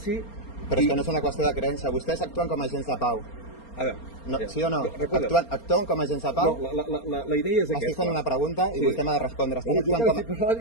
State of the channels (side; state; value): right; late; 4.3 ms